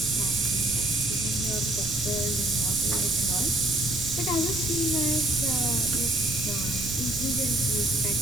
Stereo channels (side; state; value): right; noise; rumble, 10 dB below the sound